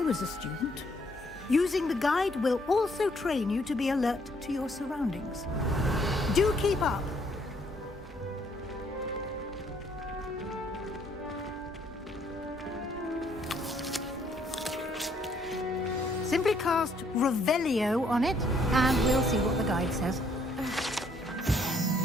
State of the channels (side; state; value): both; normal; correlation 0.67